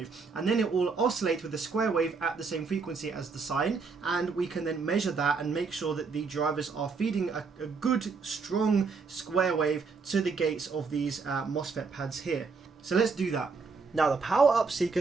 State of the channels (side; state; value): left; quieter; 4.8 dB